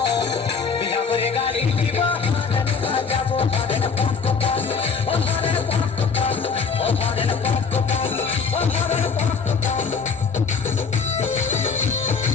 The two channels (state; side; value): quieter; right; 5.4 dB